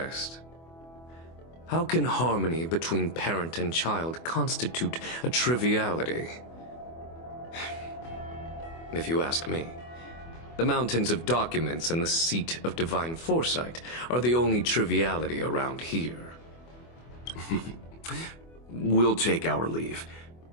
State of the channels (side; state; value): right; late; 24 ms